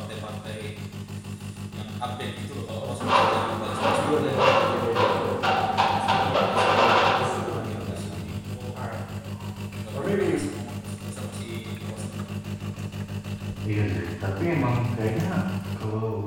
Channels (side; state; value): both; identical; correlation 1.00